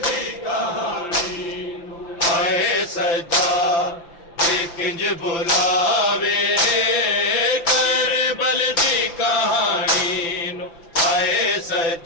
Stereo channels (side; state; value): right; late; 5.9 ms